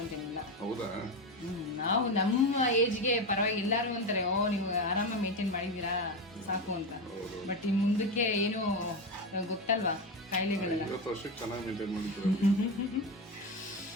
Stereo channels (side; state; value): both; normal; correlation 0.16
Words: ಅಂತೇನಿಲ್ಲ. ಹೌದಾ? ನಾವು ನಮ್ಮ ಏಜ್ಗೆ ಪರವಾಗಿ ಎಲ್ಲರೂ ಅಂತಾರೆ, ಓ ನೀವು ಆರಾಮಾಗಿ ಮೇಂಟೈನ್ ಮಾಡಿದ್ದೀರಾ ಸಾಕು ಅಂತ. ಬಟ್ ಇನ್ನು ಮುಂದಕ್ಕೆ ಏನು ಗೊತ್ತಲ್ವಾ ಕಾಯಿಲೆಗಳೆಲ್ಲ. 20 ವರ್ಷಕ್ಕೆ ಚೆನ್ನಾಗಿ ಮೇಂಟೈನ್ ಮಾಡಿದ್ರು.